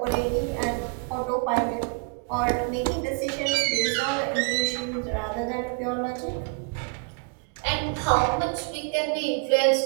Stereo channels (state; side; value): quieter; left; 38.8 dB